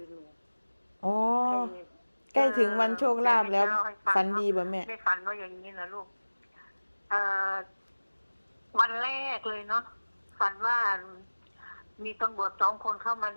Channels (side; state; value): both; inverted; correlation -1.00